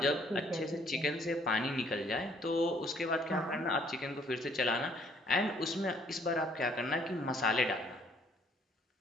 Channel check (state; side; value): normal; both; correlation 0.63